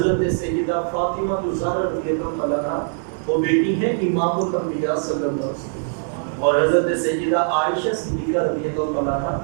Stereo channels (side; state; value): left; silent; digital silence